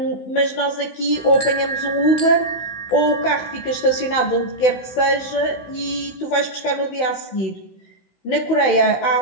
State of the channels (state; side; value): late; right; 16 ms